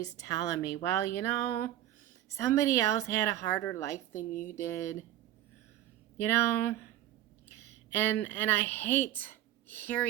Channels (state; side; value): quieter; left; 12.8 dB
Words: telling me, well, you know, somebody else had a harder life than you did, you know, and I hate